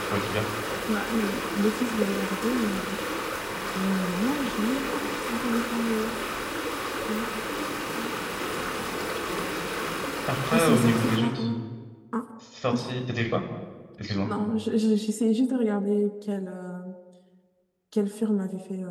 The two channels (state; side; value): identical; both; correlation 1.00